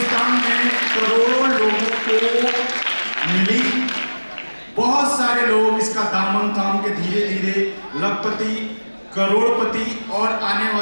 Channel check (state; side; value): inverted; both; correlation -1.00